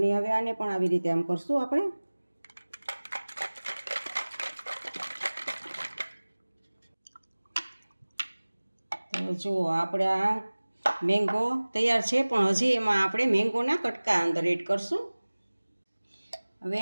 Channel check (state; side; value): inverted; both; correlation -1.00